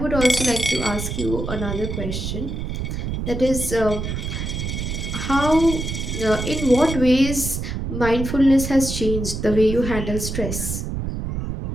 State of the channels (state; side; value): noise; right; rumble, 4 dB below the sound